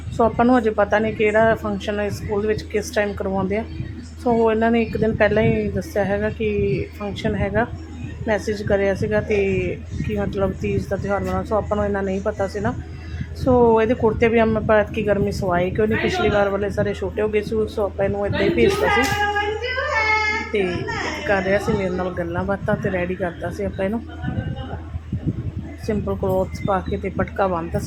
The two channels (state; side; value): identical; both; correlation 1.00